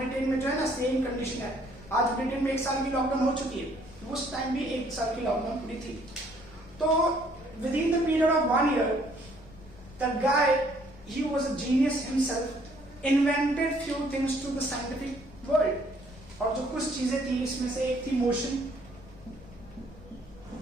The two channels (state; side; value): noise; left; rumble, 20 dB below the sound